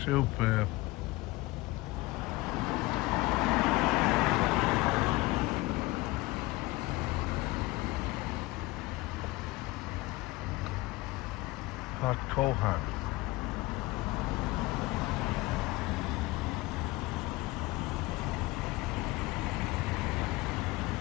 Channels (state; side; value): quieter; right; 21.1 dB